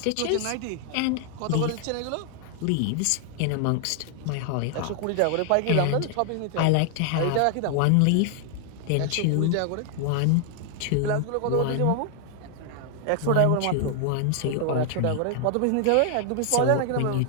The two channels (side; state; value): both; different; correlation 0.00